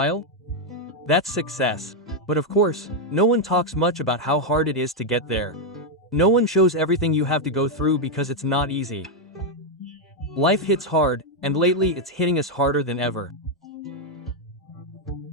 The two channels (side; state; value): both; normal; correlation 0.01